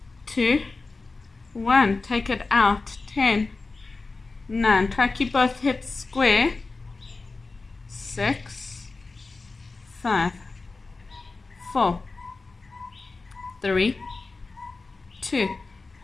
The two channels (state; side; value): quieter; right; 3.8 dB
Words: 2, 1. Take it out. 10, 9. Try to keep both hips square. 6, 5, 4, 3, 2,